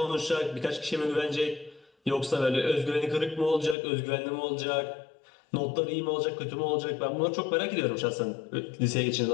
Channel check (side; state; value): right; drops out; at 3.8 s